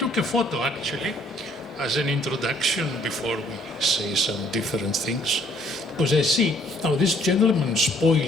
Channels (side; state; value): both; normal; correlation 0.63